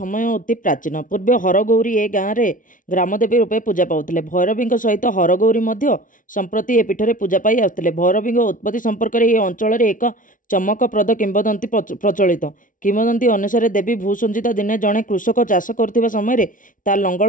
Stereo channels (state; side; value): late; right; 0.38 ms